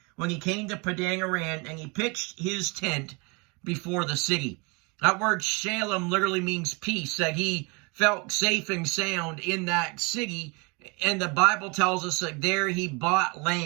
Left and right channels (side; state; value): left; quieter; 29.6 dB